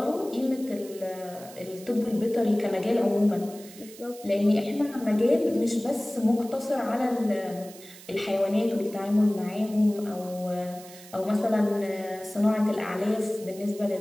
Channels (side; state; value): right; noise; hiss, 19 dB below the sound